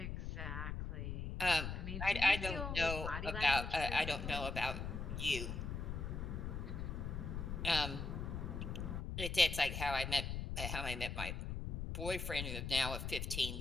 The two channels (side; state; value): left; noise; rumble, 4 dB below the sound